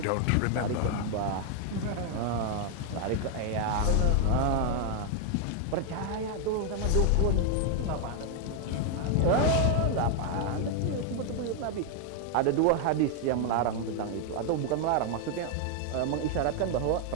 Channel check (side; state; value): both; different; correlation 0.00